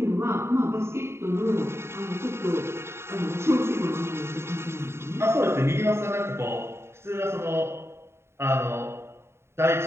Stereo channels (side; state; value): left; late; 0.12 ms